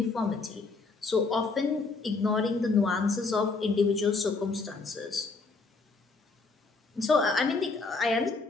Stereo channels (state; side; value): quieter; right; 3.9 dB